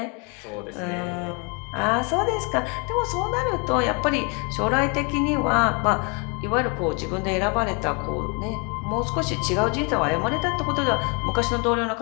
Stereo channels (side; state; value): right; quieter; 33.7 dB